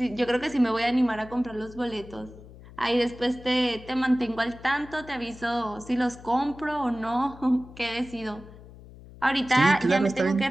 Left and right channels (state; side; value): noise; left; hum, 19 dB below the sound